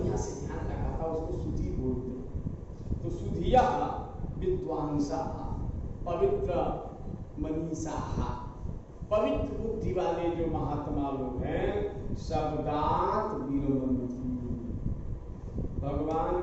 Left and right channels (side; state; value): both; identical; correlation 1.00